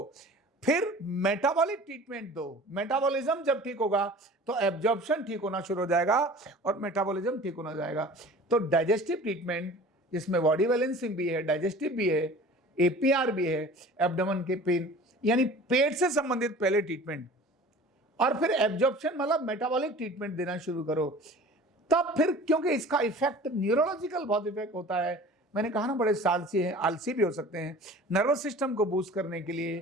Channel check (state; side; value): normal; both; correlation 0.43